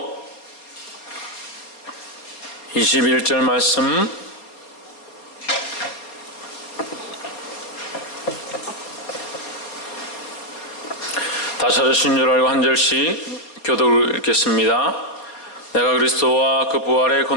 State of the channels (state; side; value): late; right; 4.3 ms